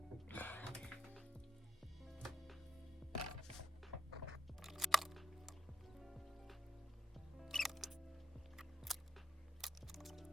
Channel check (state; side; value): normal; both; correlation 0.76